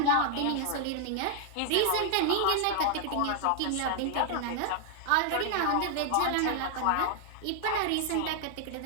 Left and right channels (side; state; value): both; different; correlation 0.00